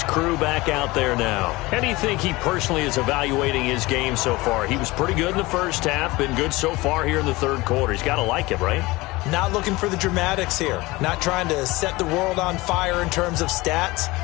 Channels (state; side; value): quieter; right; 21.3 dB